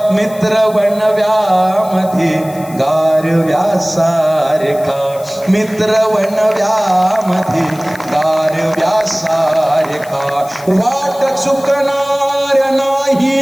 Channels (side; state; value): left; noise; hiss, 20 dB below the sound